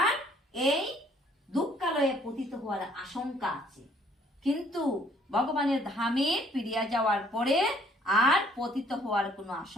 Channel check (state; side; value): normal; both; correlation 0.61